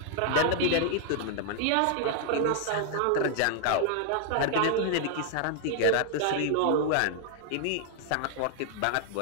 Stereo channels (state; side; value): different; both; correlation 0.00